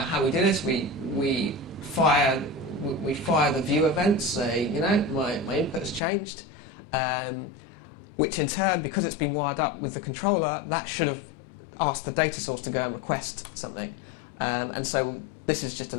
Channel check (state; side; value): drops out; right; at 6.0 s